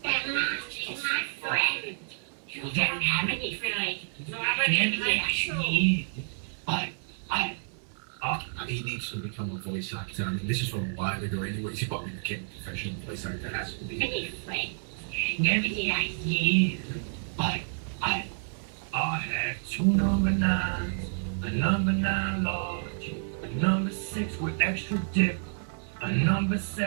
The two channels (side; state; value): left; silent; 58 dB below the other